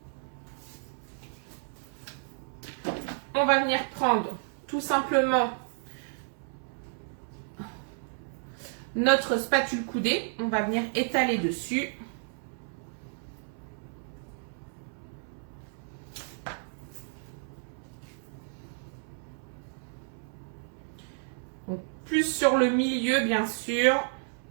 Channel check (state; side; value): silent; left; 57 dB below the other